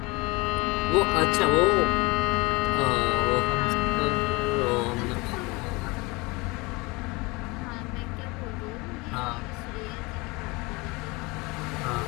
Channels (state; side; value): quieter; right; 25.1 dB